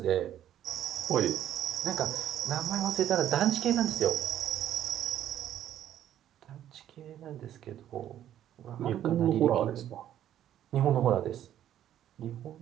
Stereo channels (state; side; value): quieter; left; 11.3 dB